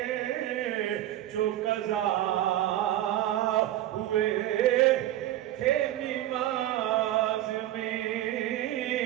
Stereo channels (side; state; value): left; quieter; 13.6 dB